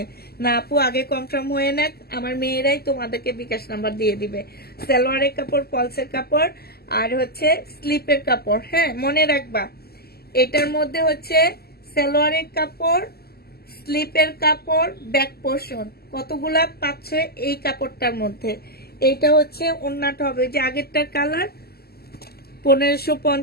না আপু, আগে কনফার্ম হয়ে নেক, আমার মেয়েরাই তোমাদেরকে বিকাশ নাম্বার দিয়ে দিবে। সালোয়ারের কাপড়, পলসের কাপড় আর হচ্ছে স্লিপের কাপড়। হ্যাঁ মনে রাখবা, এটার মধ্যে হচ্ছে সালোয়ারের কাপড়, স্লিপের কাপড়, ব্যাক পোর্শন কতগুলা পাচ্ছ এই কাপড়টার মধ্যে। এইটা হচ্ছে ওড়নাটা হবে, যে আগেরটার কালার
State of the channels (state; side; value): late; right; 0.46 ms